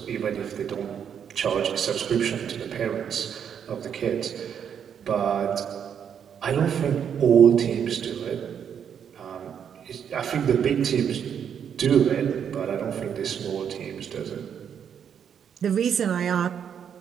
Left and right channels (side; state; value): left; quieter; 8.1 dB